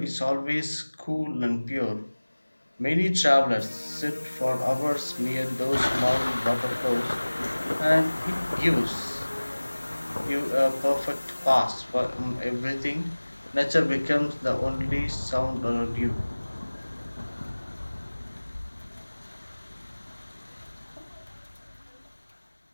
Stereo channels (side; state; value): both; inverted; correlation -1.00